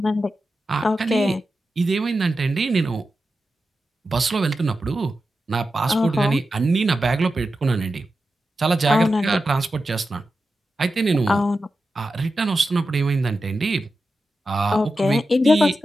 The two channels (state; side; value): normal; both; correlation 0.91